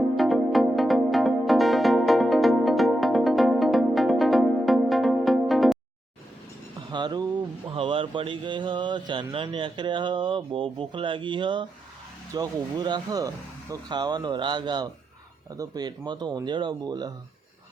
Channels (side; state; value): both; normal; correlation 0.86